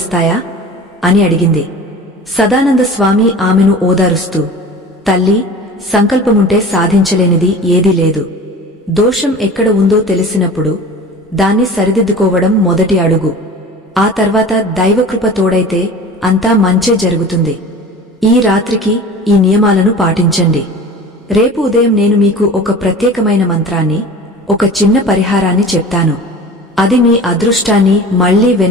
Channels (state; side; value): normal; both; correlation 0.38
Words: అని అడిగింది. సదానంద స్వామి ఆమెను ఓదారుస్తూ, తల్లి, సంకల్పముంటే సాధించలేనిది ఏదీ లేదు. దోషం ఎక్కడ ఉందో తెలిసినప్పుడు దాన్ని సరిదిద్దుకోవడం మొదటి అడుగు. ఆ తర్వాత దైవకృప తోడైతే అంతా మంచే జరుగుతుంది. ఈ రాత్రికి ఈ నియమాలను పాటించండి. రేపు ఉదయం నేను మీకు ఒక ప్రత్యేకమైన మంత్రాన్ని, ఒక చిన్న పరిహారాన్ని చెప్తాను. అది మీ అదృష్టాన్ని మళ్లీ